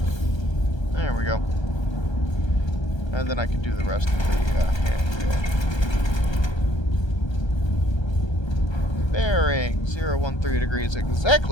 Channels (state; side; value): late; right; 1.3 ms